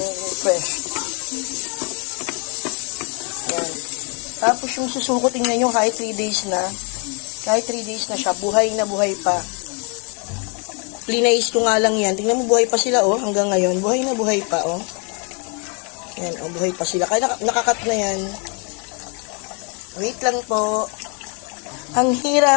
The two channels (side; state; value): right; quieter; 35.8 dB